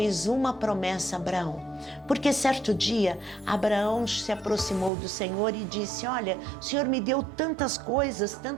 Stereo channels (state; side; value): drops out; left; at 4.9 s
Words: uma promessa a Abraão, porque certo dia Abraão se aproximou do Senhor e disse: olha, o Senhor me deu tantas coisas,